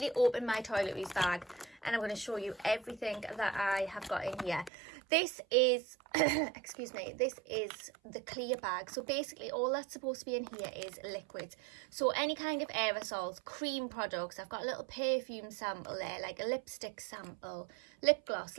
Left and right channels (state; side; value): drops out; left; at 4.7 s